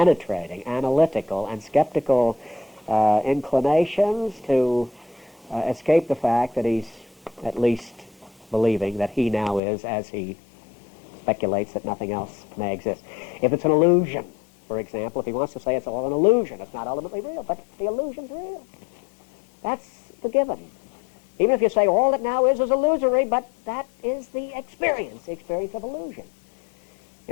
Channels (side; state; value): right; drops out; at 9.6 s